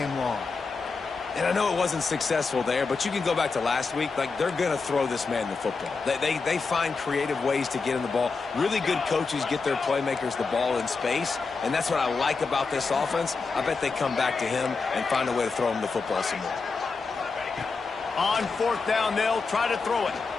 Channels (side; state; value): right; quieter; 4.5 dB